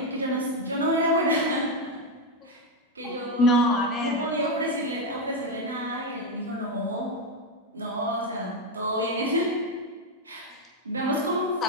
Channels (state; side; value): normal; both; correlation 0.05